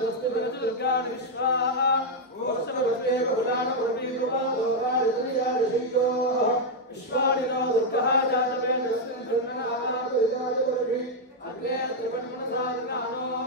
दुर्गाणि विश्वाः ओषधवस्ते बहुलानप्रवीरुवादोराजनियादिशय्यो विश्वाणि नो दुर्गः जातवेदस्मिन् ब्रह्मणादापरिजायवर्षि अग्रे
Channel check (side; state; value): both; normal; correlation 0.00